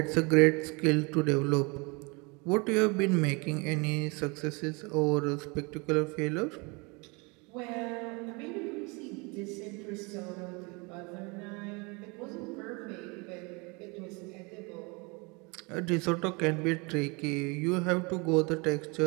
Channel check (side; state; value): left; quieter; 28.9 dB